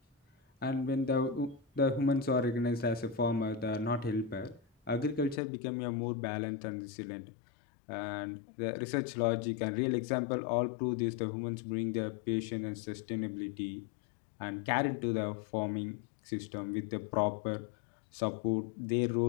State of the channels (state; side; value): drops out; right; at 5.4 s